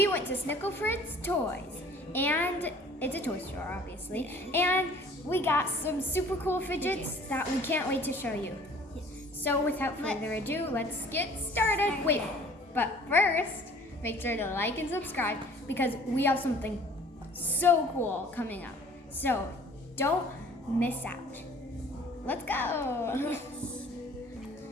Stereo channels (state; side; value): normal; both; correlation 0.51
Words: went to Snickle Fritz Toys. And it's a toy store, obviously. And we got some super cool fidgets that we can't wait to show you. So without further ado, let's get started. Wait, but first, make sure to like and subscribe because we have something so cool coming up. So don't miss out. Let's go.